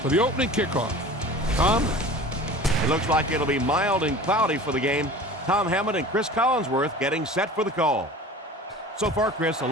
for the opening kickoff. Tom? It looks like it'll be mild and cloudy for the game. Tom Hammond and Chris Collinsworth getting set for the call. So far, Chris, a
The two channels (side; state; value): both; normal; correlation 0.39